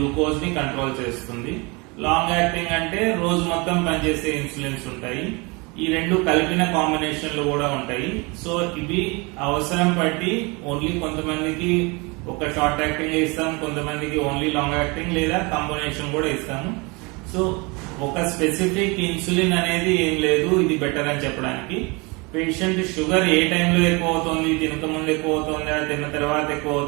ని కంట్రోల్ చేస్తుంది. లాంగ్ యాక్టింగ్ అంటే రోజు మొత్తం పనిచేసే ఇన్సులిన్స్ ఉంటాయి. ఈ రెండు కలిపిన కాంబినేషన్లు కూడా ఉంటాయి. సో ఇవి అవసరం బట్టి ఓన్లీ కొంతమందికి ఒక షార్ట్ యాక్టింగ్ ఇస్తాం, కొంతమందికి ఓన్లీ లాంగ్ యాక్టింగ్ లేదా కాంబినేషన్ కూడా ఇస్తాము. సో ఒక స్పెసిఫిక్ ఇన్సులిన్ అనేది ఏం లేదు ఇది బెటర్ అని చెప్పడానికి. పేషెంట్ షుగర్ ఏ టైంలో ఎక్కువ అవుతుంది, తినక ముందు ఎక్కువ అవుతుందా, తిన్న తర్వాత ఎక్కువ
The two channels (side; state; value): left; quieter; 27.8 dB